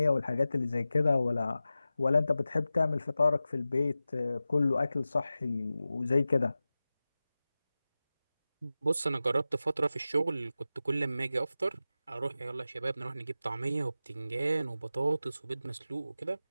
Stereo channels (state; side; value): inverted; both; correlation -0.94